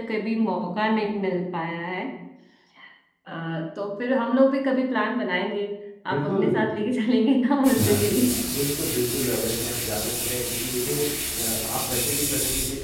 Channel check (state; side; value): identical; both; correlation 1.00